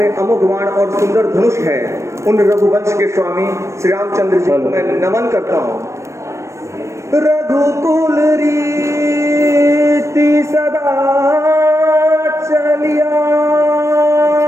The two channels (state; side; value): late; left; 0.14 ms